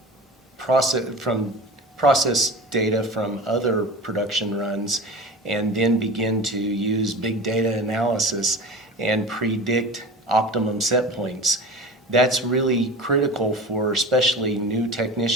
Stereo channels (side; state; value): both; normal; correlation 0.34